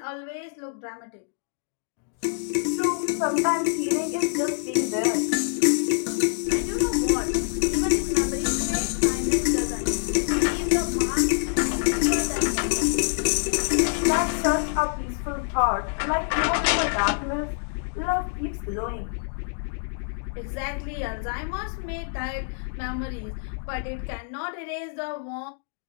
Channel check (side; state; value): right; silent; digital silence